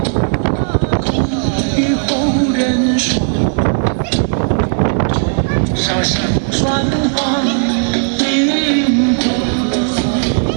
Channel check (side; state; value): left; silent; digital silence